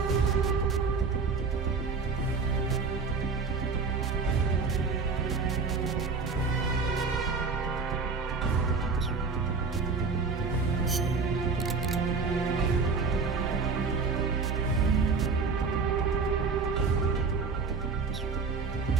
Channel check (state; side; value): quieter; left; 4.7 dB